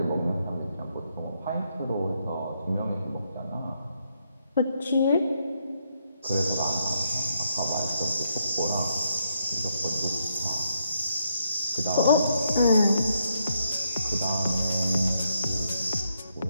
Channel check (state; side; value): inverted; both; correlation -0.78